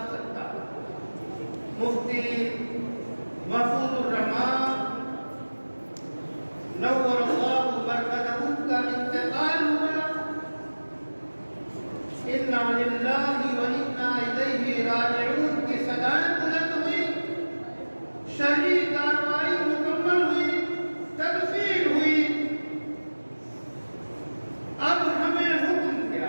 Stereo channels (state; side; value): inverted; both; correlation -1.00